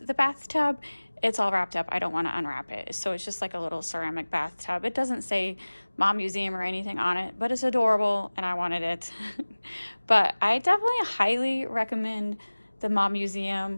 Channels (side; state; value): both; inverted; correlation -1.00